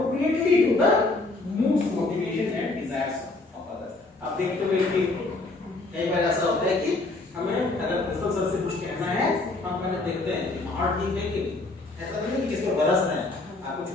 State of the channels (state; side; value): quieter; right; 3.1 dB